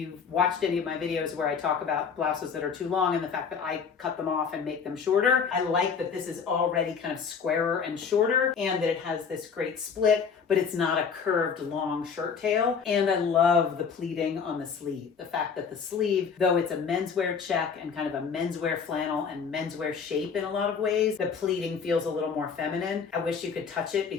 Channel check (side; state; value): right; quieter; 6.2 dB